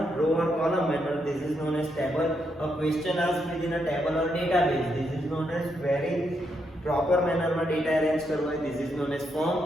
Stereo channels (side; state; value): both; normal; correlation 0.79